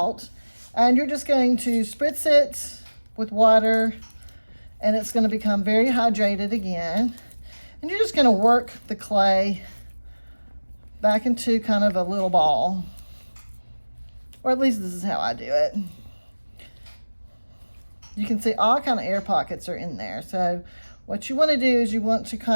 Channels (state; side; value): inverted; both; correlation -1.00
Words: And you're just going to spritz it with water, and it's going to become very hydrated again. And you're just going to work the clay back into kind of a little ball. Or at least this is how I do it. You can see all kind of air pockets are in there. So what you want to do is you want to